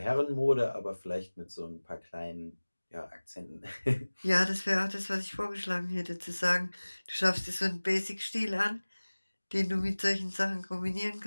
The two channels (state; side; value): inverted; both; correlation -1.00